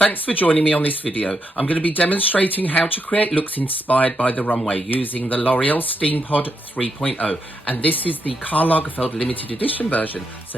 for joining me on this video. I'm going to be demonstrating how to create looks inspired by the runway using the L'Oreal Steampod 3.0, and this is the Karl Lagerfeld limited edition version,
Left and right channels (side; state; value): both; normal; correlation 0.81